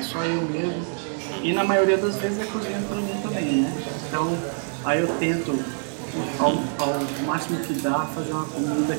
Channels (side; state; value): left; silent; 62 dB below the other